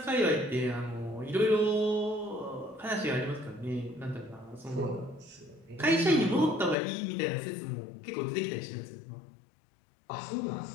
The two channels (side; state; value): right; drops out; at 6.8 s